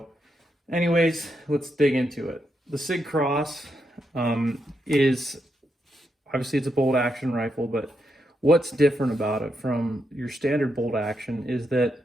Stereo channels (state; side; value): normal; both; correlation 0.82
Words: anyways, let's dig into it. The Sig Cross is obviously it's a bolt action rifle, but what's different about it from your standard bolt action is